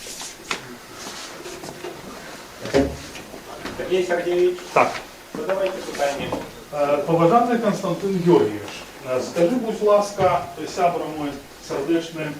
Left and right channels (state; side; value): identical; both; correlation 1.00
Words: Сергей Сергеевич, Так, задавайте питання. поважаний Константин Георгійович, скажи, будь ласка, сябра мой сердечний,